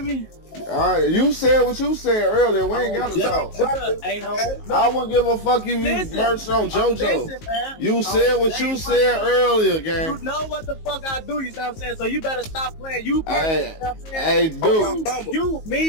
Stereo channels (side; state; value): right; late; 19 ms